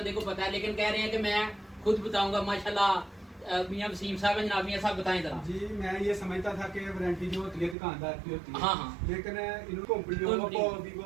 को पता है, लेकिन कह रहे हैं कि मैं खुद बताऊंगा। माशाल्लाह मियां वसीम साहब है जनाब, मियां साहब बताएं जरा। जी मैं ये समझता था कि वारंटी जो होती है दुकानदार की होती है। हाँ हाँ। लेकिन इन कंपनियों को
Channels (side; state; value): left; drops out; at 7.8 s